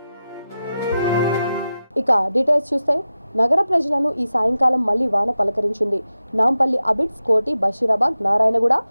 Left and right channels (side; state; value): both; inverted; correlation -0.92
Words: ఇక డీటెయిల్స్ చూస్తే నగర ప్రజలను ఈ సాయంకాలం మళ్లీ వాన పలకరించింది. నాంపల్లి, అబిడ్స్, కోటి, బషీరాబాద్, నారాయణగూడ,